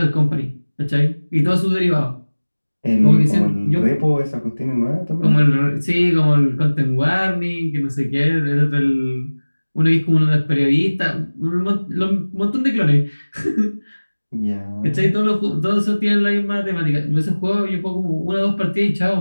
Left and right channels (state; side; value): inverted; both; correlation -1.00